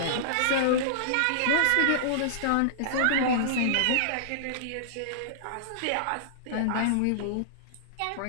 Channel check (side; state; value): both; different; correlation -0.01